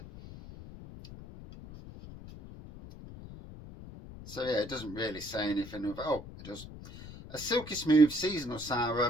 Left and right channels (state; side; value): noise; left; rumble, 14 dB below the sound